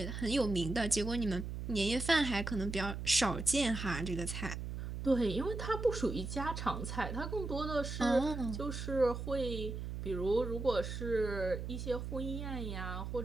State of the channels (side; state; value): right; noise; hum, 5 dB below the sound